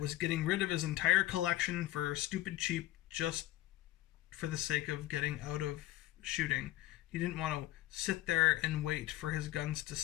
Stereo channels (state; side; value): quieter; right; 16.0 dB